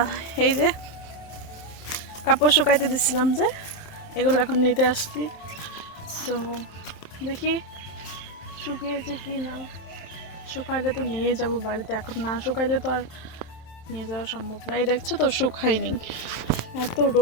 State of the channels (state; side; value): late; right; 27 ms